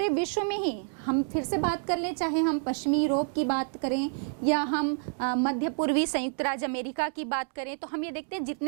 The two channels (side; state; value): left; silent; 59 dB below the other